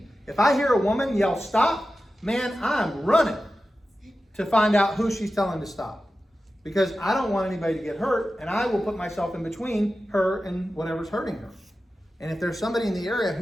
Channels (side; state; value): both; normal; correlation 0.93